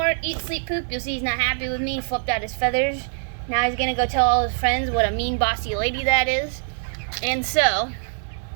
eat, sleep, poop. You'll see he's not happy with me. He flipped out his feathers. Now he's gonna go tell all his friends what a mean, bossy lady that is. And so,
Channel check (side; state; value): left; silent; 59 dB below the other